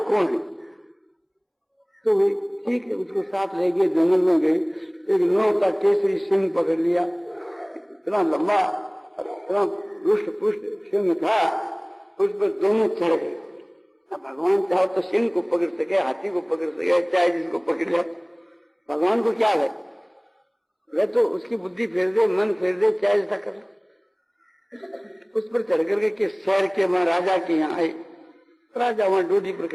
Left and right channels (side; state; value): both; identical; correlation 1.00